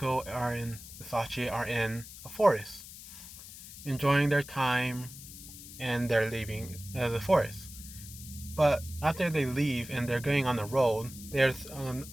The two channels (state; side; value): noise; left; hiss, 15 dB below the sound